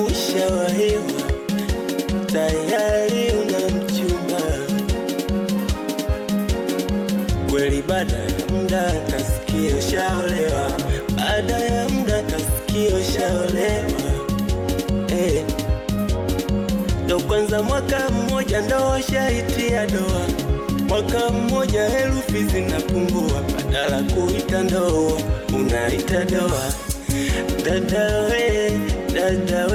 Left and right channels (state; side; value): identical; both; correlation 1.00